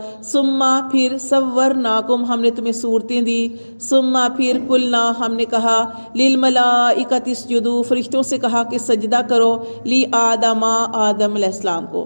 ثم پھر صورناکم ہم نے تمہیں صورتیں دی ثم پھر قلنا ہم نے کہا للملائکۃ اسجدوا فرشتوں سے کہا کہ سجدہ کرو لی آدم علیہ السلام کو۔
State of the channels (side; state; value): both; inverted; correlation -1.00